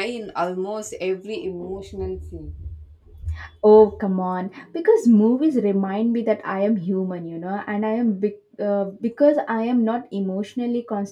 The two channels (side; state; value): both; identical; correlation 1.00